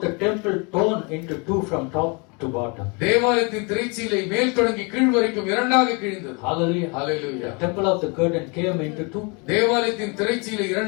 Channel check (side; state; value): right; quieter; 31.5 dB